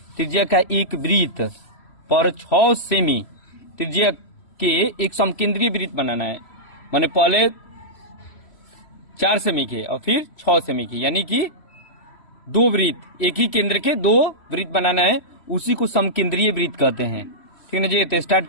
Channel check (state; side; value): late; right; 3.0 ms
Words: त्रिज्या का एक वृत्त पर 6 सेमी त्रिज्या के एक समकेंद्रीय वृत्त बनाना है। माने पहले 4 सेमी के और फिर 6 सेमी की, यानी कि 2 वृत्त, एक ही केंद्र के 2 वृत्त बनाना है, उसी को समकेंद्रीय वृत्त कहते हैं। ठीक है जी, तो स्टार्ट